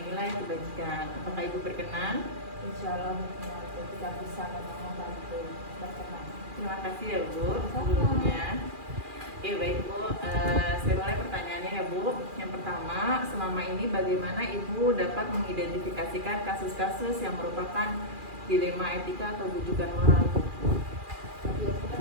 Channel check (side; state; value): left; late; 2.4 ms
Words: kebajikan. Apakah Ibu berkenan? Insya Allah berkenan, kita bisa membantu berkenan. Terima kasih ya Bu sebelumnya. Oke baik Bu, saya mulai pertanyaannya ya Bu. Yang pertama, selama ini bagaimana Ibu dapat mengidentifikasikan kasus-kasus yang merupakan dilema etika atau bujukan moral? Tapi